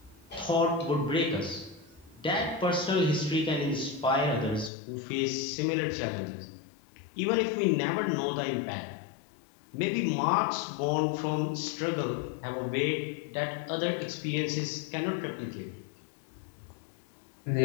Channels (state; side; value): drops out; right; at 4.7 s